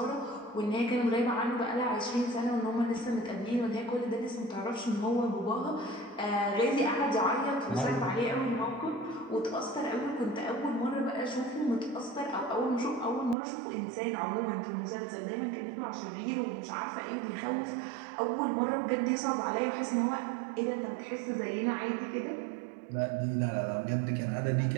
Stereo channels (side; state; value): left; drops out; at 13.4 s